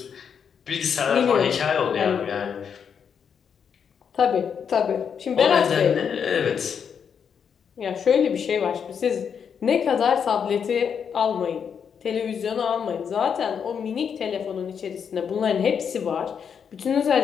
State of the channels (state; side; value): quieter; right; 7.2 dB